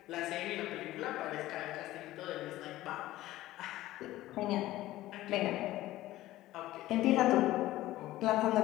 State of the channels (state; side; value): quieter; right; 15.9 dB